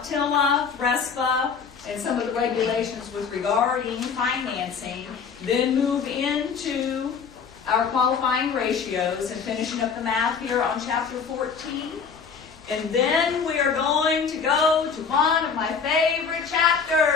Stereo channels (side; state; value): right; quieter; 6.0 dB